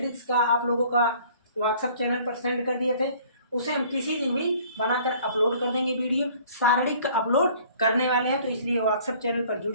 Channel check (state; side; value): inverted; both; correlation -0.53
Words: का आप लोगों का व्हाट्सएप चैनल पर सेंड कर दिए थे, उसे हम किसी दिन भी बनाकर अपलोड कर देंगे, वीडियो सारणिक अपलोड करने वाले हैं, तो इसलिए व्हाट्सएप चैनल पर जुड़